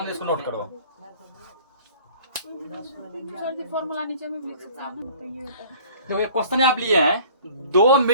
इसको नोट करो। फॉर्मूला नीचे में लिख सकते हैं। तो ये क्वेश्चन आप लिए हैं, 2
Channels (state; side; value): inverted; both; correlation -0.50